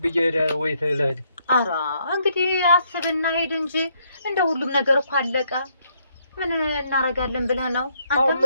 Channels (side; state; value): both; inverted; correlation -0.72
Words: ብዬ ወይ ተለህድ። ኧረ እንግዲህ አስብና ሄድ እንጂ እንደው ሁሉም ነገር እኮ አለቀ። ምን እናረጋለን ብለህ ነው አንተ?